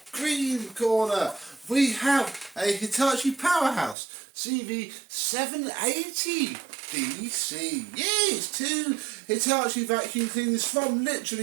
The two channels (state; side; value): drops out; left; at 4.0 s